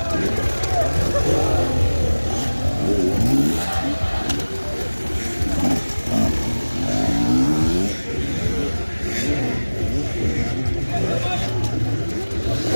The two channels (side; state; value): both; inverted; correlation -1.00